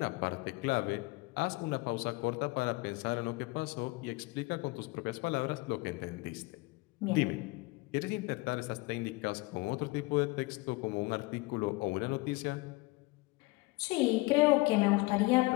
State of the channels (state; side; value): quieter; right; 23.5 dB